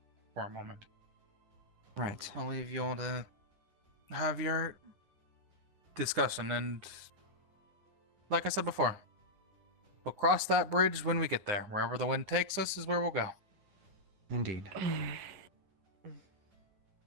for a moment. Right. I'll leave you all to have your discussion, and like I said before, we'll cross that bridge when we get there. Wherever the wind takes us is where we'll go. Indeed.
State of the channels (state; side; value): late; left; 9.8 ms